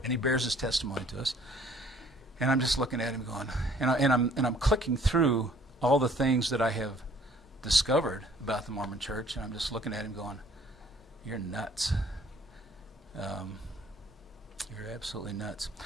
he bears his testimony to us. And I'm just looking at him going, and I'm clicking through all the things that I have discovered about the Mormon church, and I'm just looking at him going, you're nuts. You're absolutely nuts.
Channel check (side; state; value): both; normal; correlation 0.58